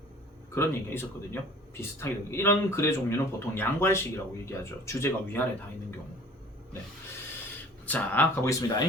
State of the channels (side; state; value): both; normal; correlation 0.47